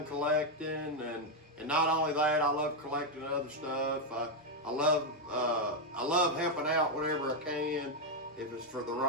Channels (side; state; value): both; normal; correlation 0.02